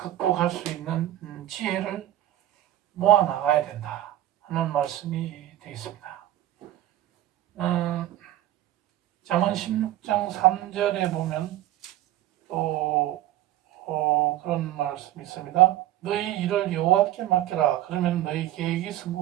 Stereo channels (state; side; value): quieter; left; 13.9 dB